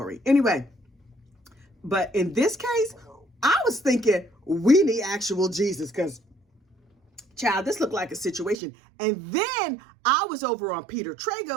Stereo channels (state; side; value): drops out; left; at 8.6 s